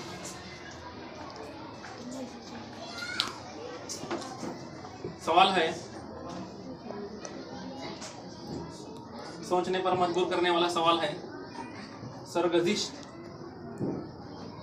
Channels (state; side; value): identical; both; correlation 1.00